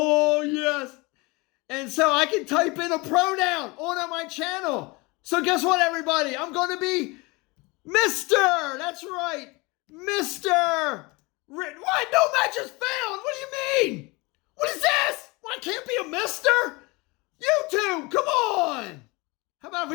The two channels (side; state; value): right; quieter; 25.4 dB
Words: yes. And so I can type in a pronoun on my channel. So guess what, everybody? I'm going to be Mr. That's right. Mr. What? No match is found. What do you mean? What is this? Well, I can't be a Mr. YouTube, come on. How about